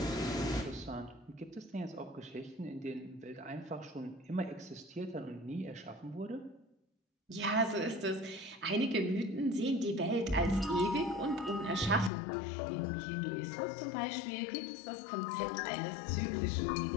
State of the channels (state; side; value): drops out; right; at 12.1 s